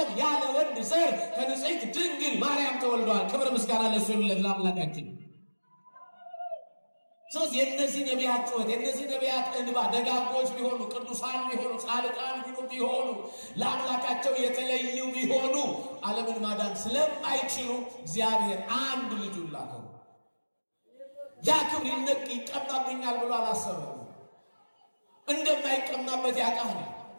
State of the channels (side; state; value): both; inverted; correlation -1.00